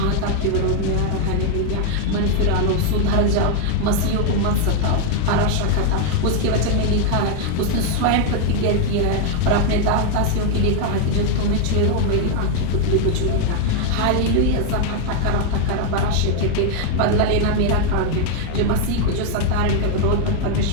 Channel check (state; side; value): different; both; correlation 0.00